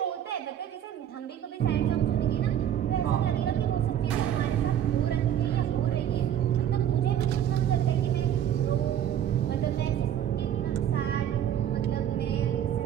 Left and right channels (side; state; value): left; quieter; 10.2 dB